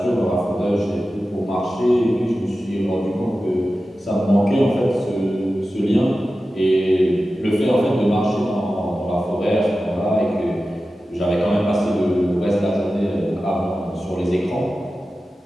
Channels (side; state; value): both; normal; correlation 0.94